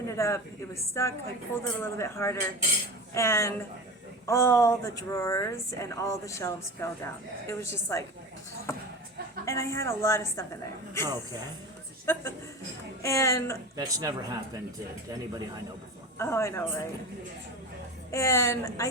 it up, it was stuck, I pulled it a little bit harder, and all the drawers and all the shelves fell down. It was just like, and I had a lot of stuff in there. Okay. And That's never happened to anybody I know before. oh, I know, right? And I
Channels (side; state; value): both; normal; correlation 0.29